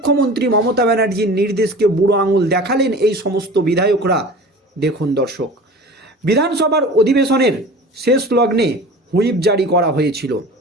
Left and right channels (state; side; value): normal; both; correlation 0.39